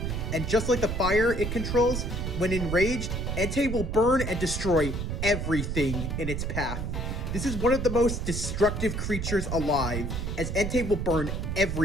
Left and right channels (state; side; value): noise; right; rumble, 3 dB below the sound